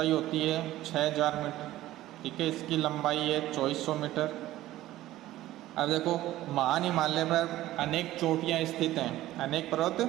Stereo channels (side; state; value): left; quieter; 15.2 dB